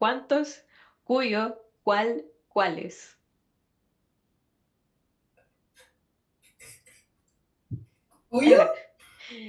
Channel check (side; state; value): both; identical; correlation 1.00